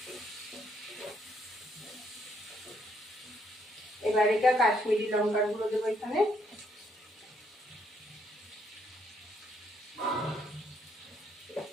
এবার এটা কাশ্মীরি লঙ্কার গুঁড়ো দেবো এখানে।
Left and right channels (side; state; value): both; normal; correlation 0.71